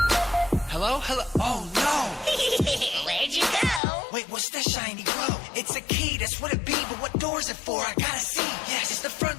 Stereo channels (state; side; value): drops out; right; at 3.8 s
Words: It's a key, that's what it be, but what door is it for? I gotta see. Yes, it's the